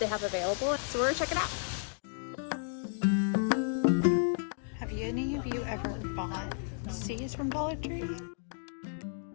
have available. So we're gonna check it out. Have any of you ever bought seeds from Dollar Tree?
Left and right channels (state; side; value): silent; right; 56 dB below the other